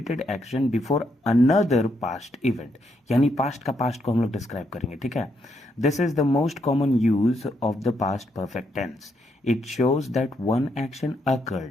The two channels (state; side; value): normal; both; correlation 0.77